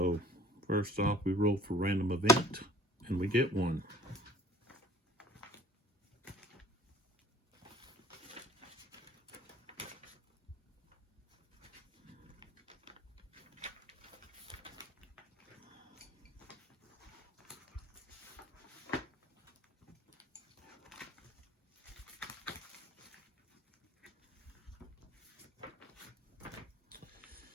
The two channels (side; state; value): both; normal; correlation 0.50